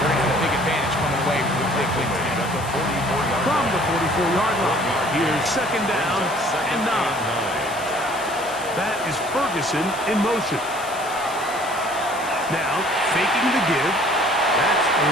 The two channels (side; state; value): left; noise; hiss, 15 dB below the sound